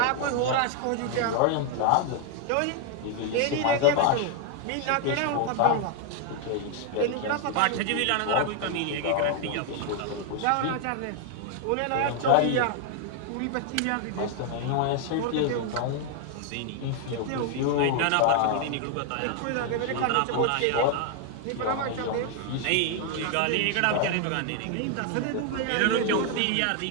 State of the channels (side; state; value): both; different; correlation 0.00